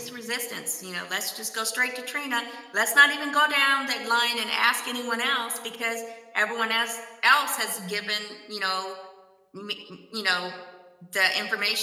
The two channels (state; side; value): identical; both; correlation 1.00